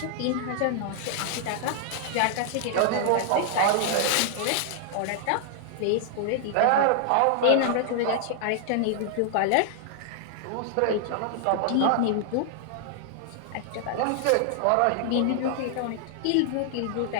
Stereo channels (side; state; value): both; different; correlation 0.00